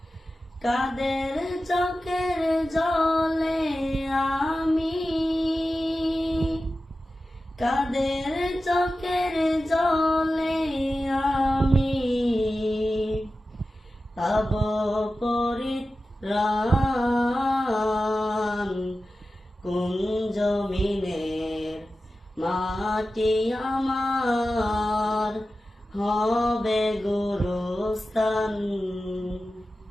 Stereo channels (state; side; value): normal; both; correlation 0.94